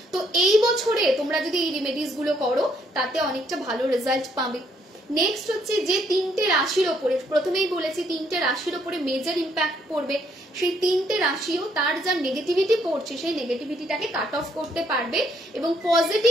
তো এই বছরে তোমরা যদি এই রেমেডিস গুলো করো তাতে অনেকটা ভালো রেজাল্ট পাবে। নেক্সট হচ্ছে যে 3টে রাশির ওপরে, প্রথমেই বলেছি 3টে রাশির ওপরে মেজর ইম্প্যাক্ট পড়বে, সেই 3টে রাশিও তার যা নেগেটিভিটি পড়ছে সেই নেগেটিভিটিটাকে কাট অফ করতে পারবে এবং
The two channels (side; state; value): both; normal; correlation 0.70